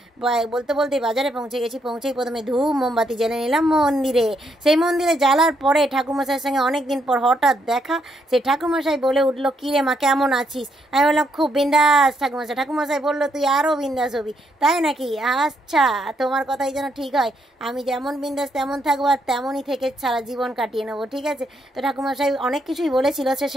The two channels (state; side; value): normal; both; correlation 0.76